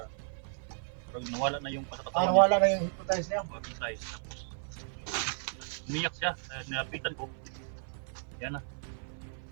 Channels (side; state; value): left; silent; 55 dB below the other